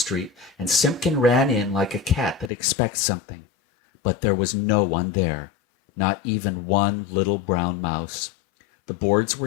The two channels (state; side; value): drops out; right; at 2.5 s